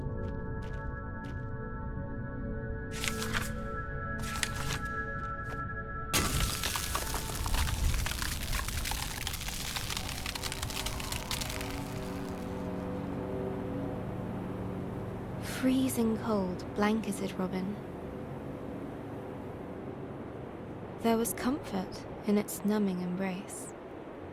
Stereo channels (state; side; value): identical; both; correlation 1.00